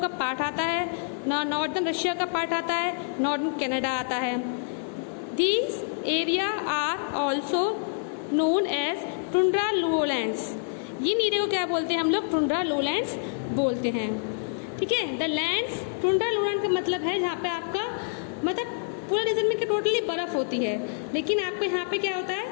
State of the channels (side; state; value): right; silent; digital silence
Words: का पार्ट आता है, नॉर्दर्न रशिया का पार्ट आता है, नॉर्दर्न कनाडा आता है। These area are also known as tundra lowlands. इन एरिया को क्या बोलते हैं हम लोग? टुंड्रा लोलैंड्स बोलते हैं। ठीक है, द लैंड्स, टुंड्रा लोलैंड का मतलब है जहाँ पे आपका मतलब पूरा रीजन में टोटली बर्फ होती है, लेकिन आपको यहाँ पे क्या होता